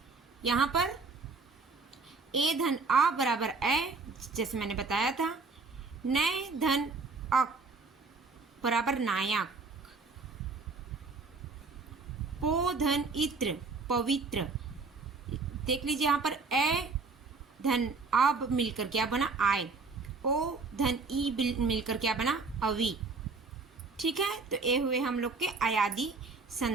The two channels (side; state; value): left; quieter; 4.1 dB